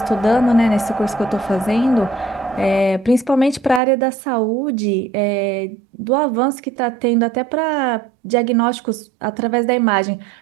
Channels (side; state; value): left; drops out; at 3.8 s